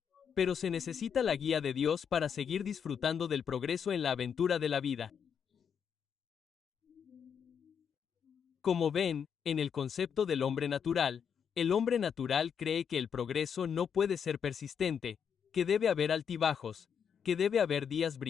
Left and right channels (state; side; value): quieter; right; 7.4 dB